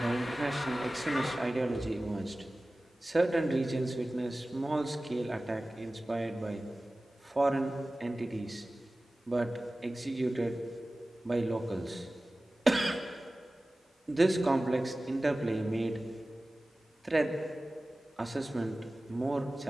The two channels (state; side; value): normal; both; correlation 0.97